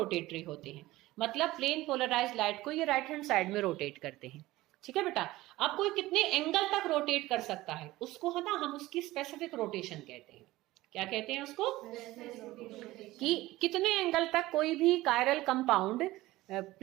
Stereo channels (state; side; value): quieter; left; 17.8 dB